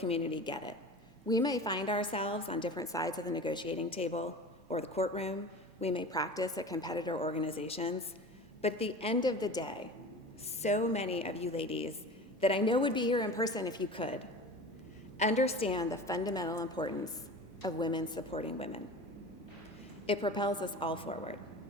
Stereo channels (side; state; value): both; normal; correlation 0.36